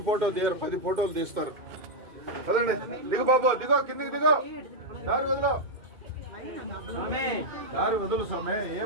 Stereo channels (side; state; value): left; late; 2.2 ms